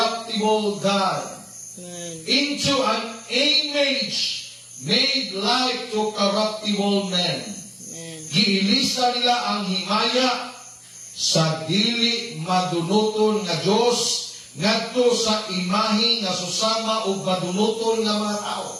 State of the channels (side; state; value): both; identical; correlation 1.00